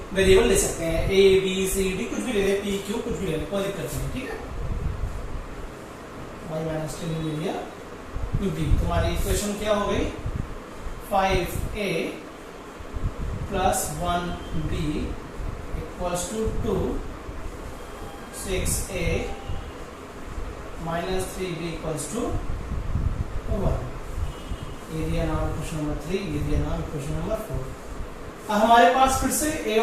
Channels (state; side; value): identical; both; correlation 1.00